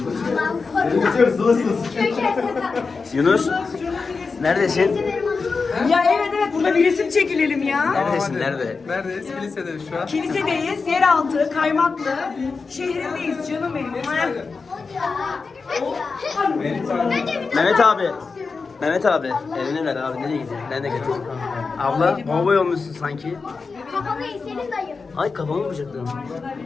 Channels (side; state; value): right; quieter; 4.6 dB